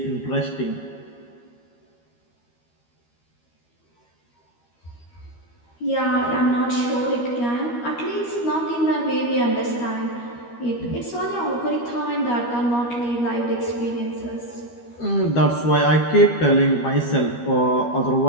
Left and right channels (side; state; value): right; late; 13 ms